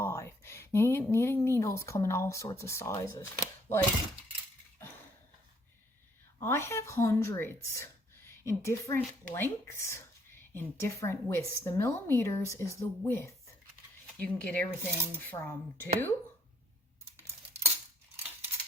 Knitting needles come in all sorts of sizes. Like, I have hundreds in different lengths, in different widths. The millimeters is the width. You can get everything from 2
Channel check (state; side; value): normal; both; correlation 0.65